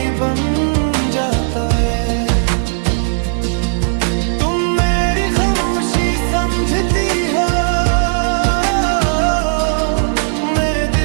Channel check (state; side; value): silent; left; 64 dB below the other